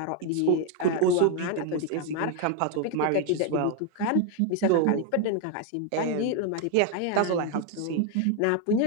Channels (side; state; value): both; different; correlation 0.01